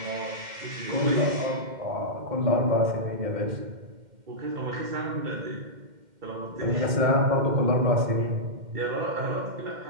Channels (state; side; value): late; left; 2.1 ms